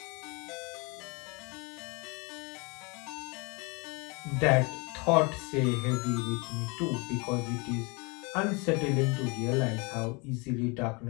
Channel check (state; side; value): quieter; right; 29.6 dB